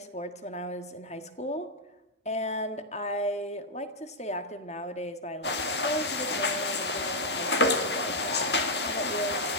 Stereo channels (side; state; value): both; normal; correlation -0.05